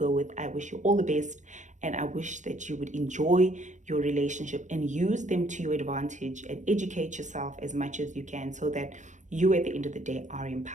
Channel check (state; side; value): late; left; 0.35 ms